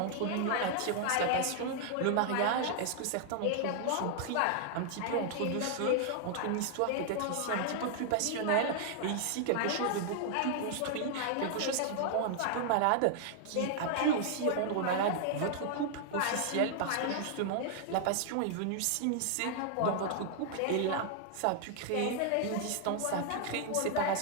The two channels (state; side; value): different; both; correlation 0.00